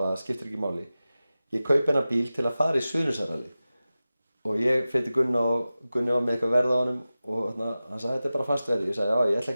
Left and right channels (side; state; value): both; inverted; correlation -0.95